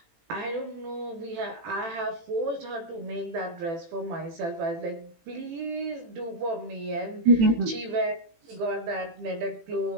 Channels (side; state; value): left; late; 18 ms